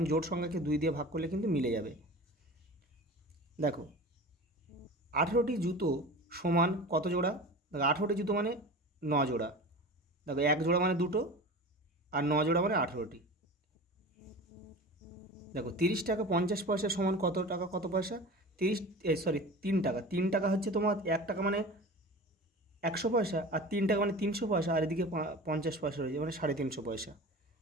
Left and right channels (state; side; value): normal; both; correlation 0.35